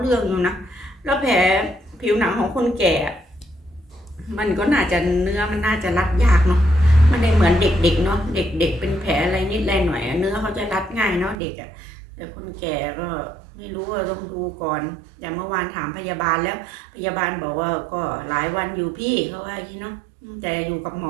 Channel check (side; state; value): left; drops out; at 11.4 s